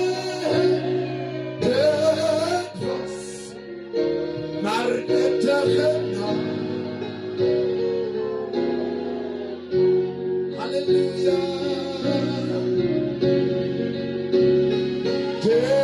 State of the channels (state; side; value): identical; both; correlation 1.00